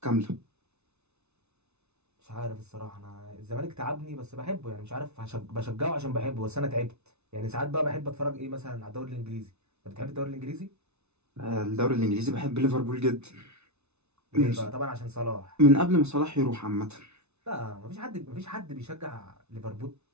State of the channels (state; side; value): late; left; 0.81 ms